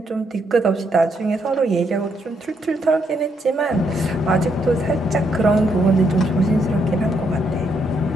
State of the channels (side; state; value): both; normal; correlation 0.75